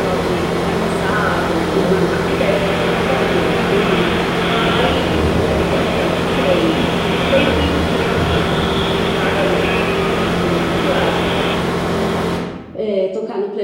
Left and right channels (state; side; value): identical; both; correlation 1.00